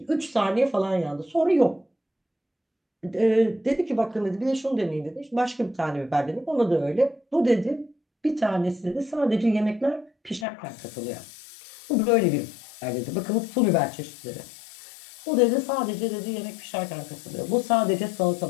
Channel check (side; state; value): right; drops out; at 10.5 s